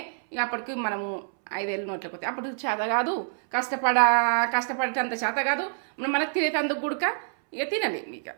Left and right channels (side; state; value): left; silent; 60 dB below the other